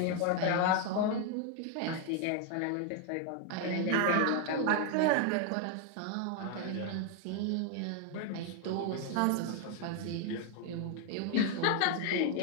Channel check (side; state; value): both; different; correlation 0.01